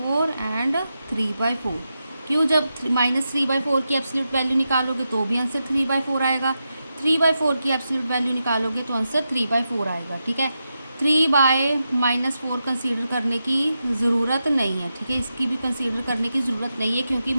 एंड 3/4। क्यों, जब -3/4 की एब्सोल्यूट वैल्यू निकालोगे तो भी आंसर 3/4 आएगा, 3/4 की एब्सोल्यूट वैल्यू निकालोगे तो आंसर 3/4 आएगा, ठीक है। 3/-4 कंसीडर करने की ज़रूरत नहीं है, ठीक है, इसकी भी कंसीडर करने की ज़रूरत नहीं है क्योंकि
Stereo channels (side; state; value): both; inverted; correlation -0.88